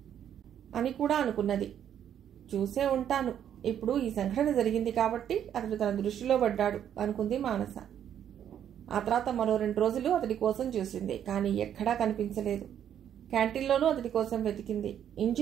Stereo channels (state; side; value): quieter; left; 9.7 dB